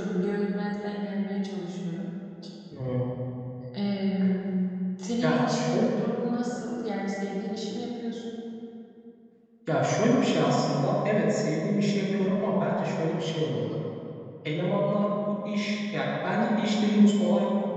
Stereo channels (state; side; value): identical; both; correlation 1.00